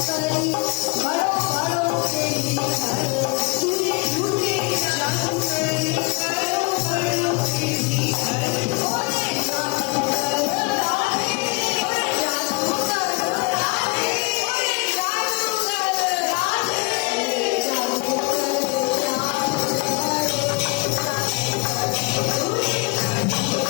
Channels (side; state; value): right; quieter; 30.0 dB